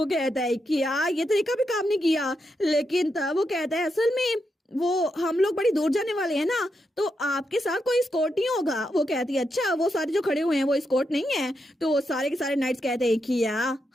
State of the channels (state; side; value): normal; both; correlation 0.83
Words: कहता है कि ये तरीका भी काम नहीं किया। लेकिन तब वो कहता है असल में वो हम लोग बड़ी दूर जाने वाले हैं ना, तो आपके साथ कोई स्कॉट नहीं होगा। वो कहती है अच्छा वो सारे जो खड़े हुए हैं वो स्कॉट नहीं है? तो वो सारे के सारे नाइट्स कहते हैं कि